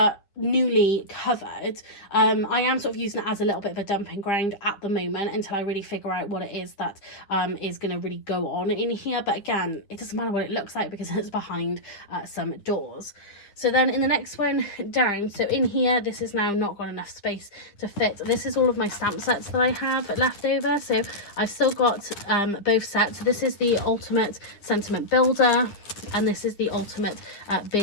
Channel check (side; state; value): right; late; 9.9 ms